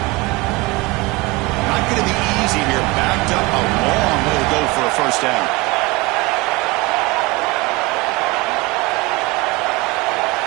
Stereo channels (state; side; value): quieter; left; 23.2 dB